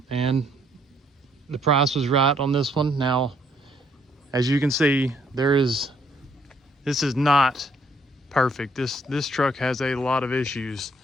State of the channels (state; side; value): normal; both; correlation 0.67